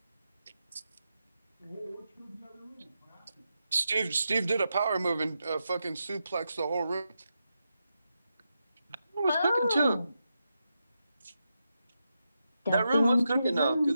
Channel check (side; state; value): both; inverted; correlation -0.87